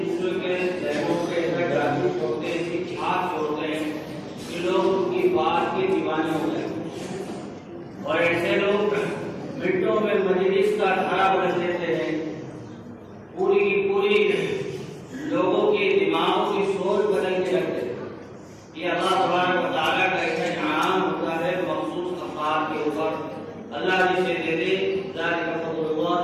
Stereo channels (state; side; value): identical; both; correlation 1.00